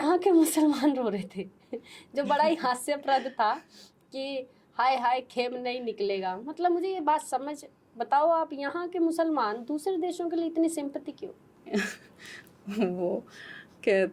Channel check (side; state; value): both; identical; correlation 1.00